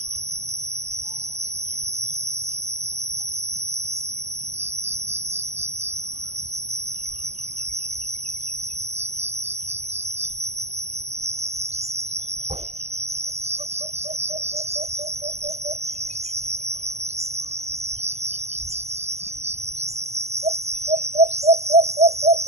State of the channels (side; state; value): left; late; 0.31 ms